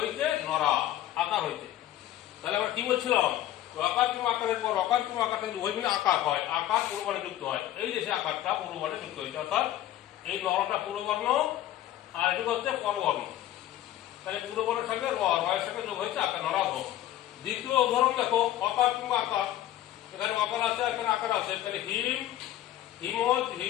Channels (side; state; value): right; quieter; 13.3 dB